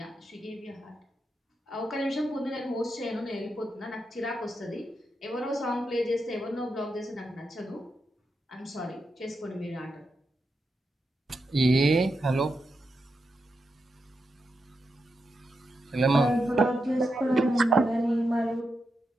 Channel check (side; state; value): both; normal; correlation 0.86